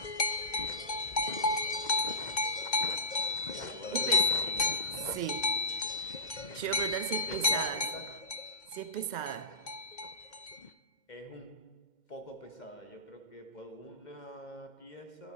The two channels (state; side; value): late; right; 2.1 ms